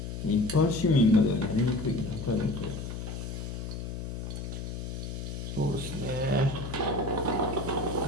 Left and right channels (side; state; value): left; noise; hum, 6 dB below the sound